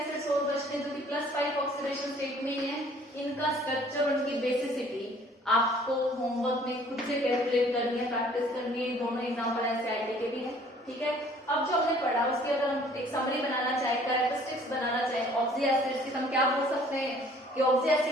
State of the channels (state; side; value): normal; both; correlation 0.55